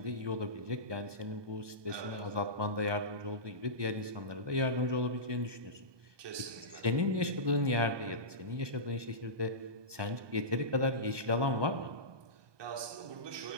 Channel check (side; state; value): left; late; 1.2 ms